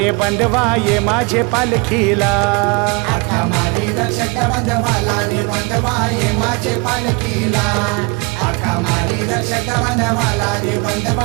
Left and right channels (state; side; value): quieter; left; 28.9 dB